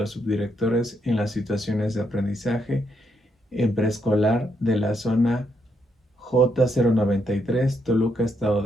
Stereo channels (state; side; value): normal; both; correlation 0.77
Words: subdirectores en las situaciones de aprendizaje en preescolar de la zona J093, Toluca, Estado